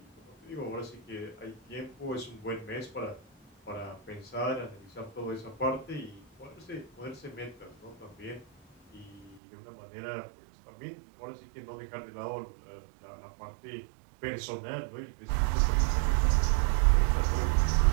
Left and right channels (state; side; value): drops out; left; at 9.4 s